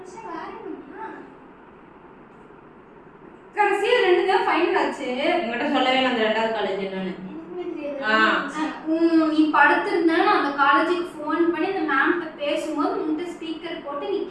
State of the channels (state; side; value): identical; both; correlation 1.00